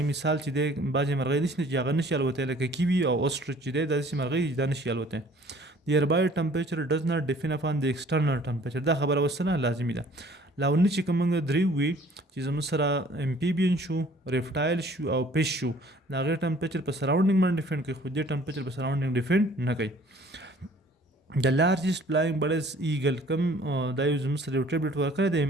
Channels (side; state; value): both; normal; correlation 0.54